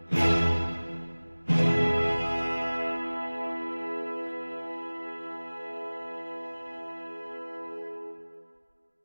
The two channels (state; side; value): inverted; both; correlation -1.00